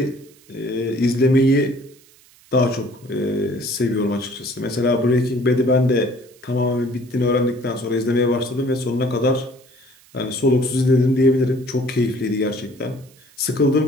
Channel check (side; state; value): right; noise; hiss, 28 dB below the sound